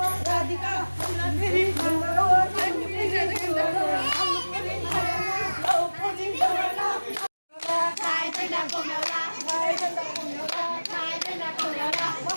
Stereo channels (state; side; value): inverted; both; correlation -1.00